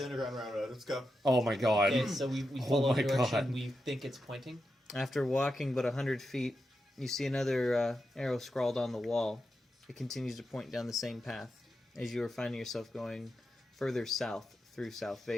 underground railroad. Let's go. Oh my god. Okay, so we Oh follow my the direction God. we think it's pointing. After walking but 100 feet, you see another arrow scrawled on the wall. It continues to point down the same path as you are finding yourself going further south through South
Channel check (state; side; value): normal; both; correlation 0.88